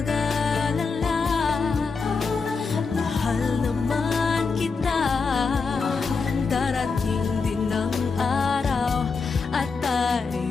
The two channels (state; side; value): quieter; right; 4.8 dB